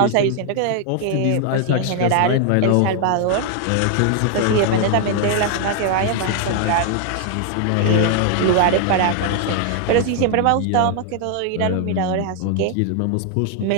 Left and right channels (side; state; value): both; different; correlation 0.00